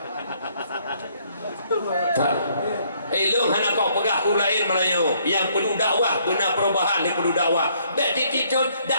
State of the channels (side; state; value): both; inverted; correlation -0.66